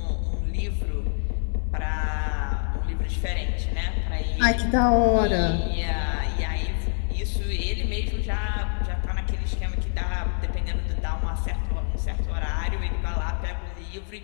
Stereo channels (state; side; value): silent; right; digital silence